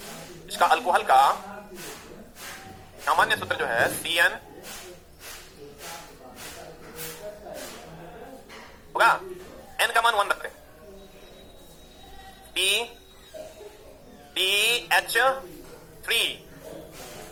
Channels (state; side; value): identical; both; correlation 1.00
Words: इसका अल्कोहल का सामान्य सूत्र जो है CN होगा, N का मान 1 रखते हैं,